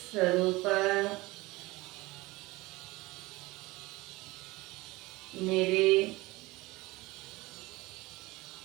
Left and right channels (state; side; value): quieter; left; 21.1 dB